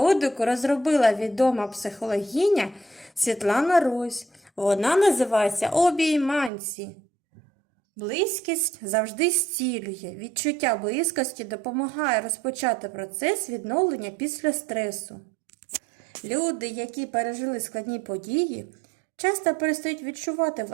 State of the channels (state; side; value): drops out; left; at 6.5 s